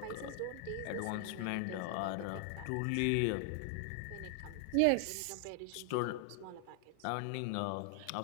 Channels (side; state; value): both; different; correlation 0.00